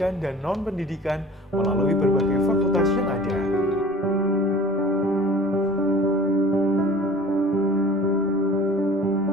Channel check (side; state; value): both; normal; correlation 0.46